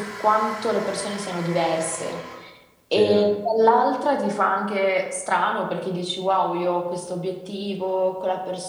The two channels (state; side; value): identical; both; correlation 1.00